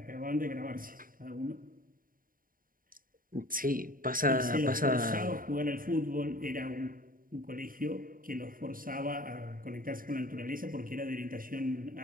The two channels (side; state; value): left; late; 0.41 ms